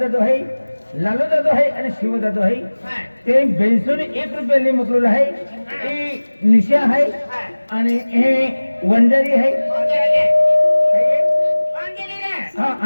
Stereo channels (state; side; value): inverted; both; correlation -1.00